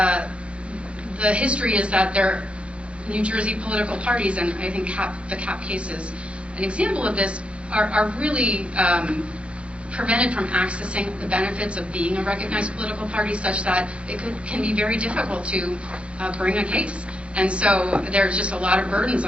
the history is that New Jersey political parties, and I think the CAP case is an example of this, are really prevented from accessing the benefits of being a recognized political party, such that it can be very difficult to bring a case. And so there's just a lot of burdens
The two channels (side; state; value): left; late; 0.060 ms